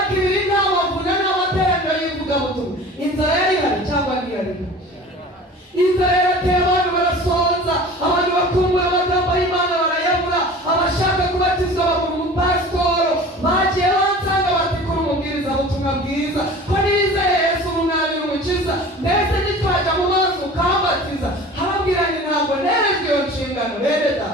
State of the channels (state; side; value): normal; both; correlation 0.41